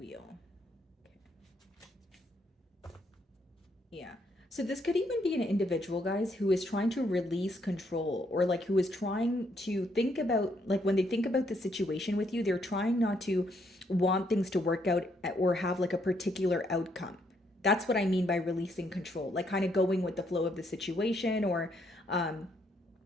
Okay. Yeah. So this could even be an individual, guys, who is trying to release control, or like who is trying to think about, like when they think about the situation with you, they're trying not to want things to work out or have like a particular outcome. That's what I mean by releasing control, like kind of going with the flow of the situation, or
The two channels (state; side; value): normal; both; correlation 0.73